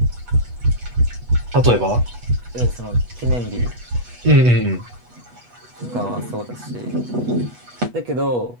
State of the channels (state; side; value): late; left; 8.2 ms